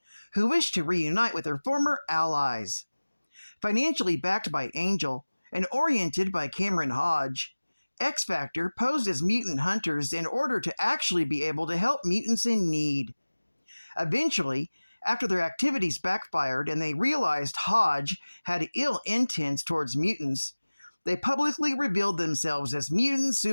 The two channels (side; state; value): both; inverted; correlation -1.00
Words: who wished to reunite with her former allies. Financially backed by Angel and oriented by Cameron Hodge, X Factor posed as mutant hunters in order to actually be able to help mutants in need. Eventually, after their activities backfired and they realized Hodge had ill intents towards mutants, they publicly revealed themselves as mutant